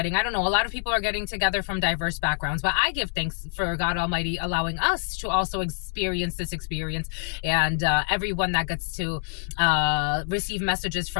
I don't know, a lot of people are getting together from diverse backgrounds. But I give thanks for God Almighty allowing us to also experience this experience, and everyone that gets to receive messages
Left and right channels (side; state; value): right; silent; 61 dB below the other